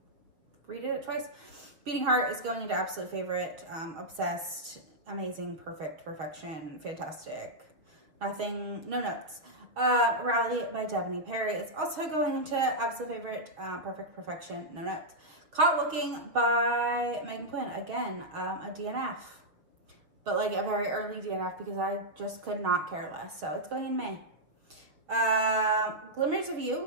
redid it twice. Beating Heart is going into absolute favorite. Obsessed, amazing, perfect, perfection, fantastic. Nothing, no notes. Rally by Jenni Bar is also going into absolute favorite. Perfect, perfection, no notes. Caught Looking by Megan Quinn. Again, a DNF. But like a very early DNF because I just could not care less. So it's going in May. Glimmers of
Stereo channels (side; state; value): left; late; 6.5 ms